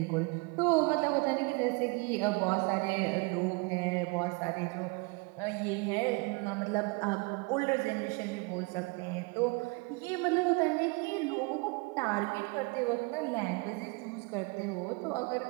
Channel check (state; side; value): quieter; left; 28.7 dB